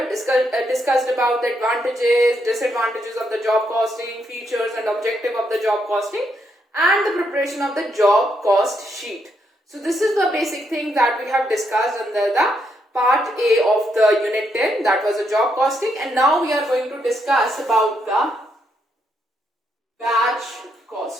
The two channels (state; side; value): normal; both; correlation 0.77